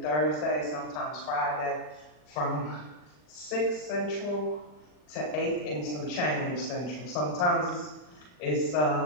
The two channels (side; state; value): right; late; 40 ms